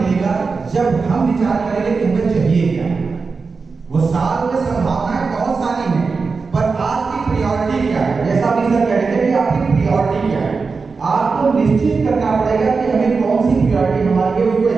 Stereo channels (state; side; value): quieter; left; 4.6 dB